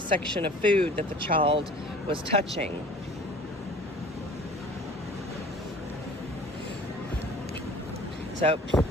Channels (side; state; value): both; normal; correlation 0.46